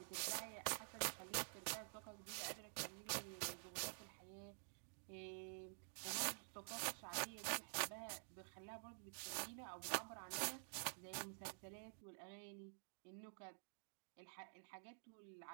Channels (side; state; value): left; silent; digital silence